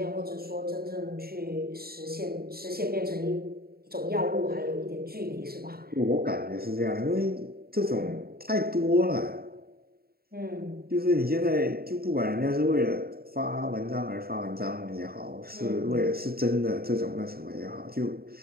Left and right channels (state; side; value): late; left; 0.45 ms